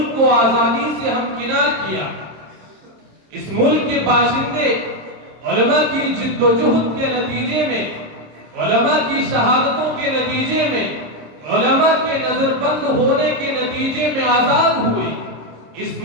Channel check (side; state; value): left; late; 26 ms